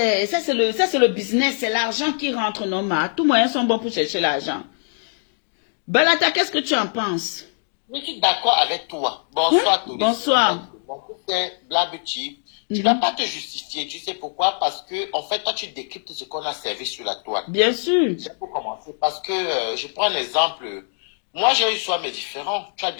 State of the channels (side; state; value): right; silent; digital silence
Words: le business, c'est l'argent qui rentre normal. Tous moyens sont bons pour chercher l'argent. Balata, qu'est-ce que tu en penses? Je suis d'accord avec toi. Bonsoir, oui? Bonsoir. Mon fils est Black Beauty. Tu ne vas pas te justifier. Tu sais pourquoi? Parce que, en fait, toi, tu décryptes ce qu'on a servi sur la toile. Bien sûr. C'est pour commencer. Parce que, je prends un exemple. Moi, j'ai eu soit mes différents. Tu as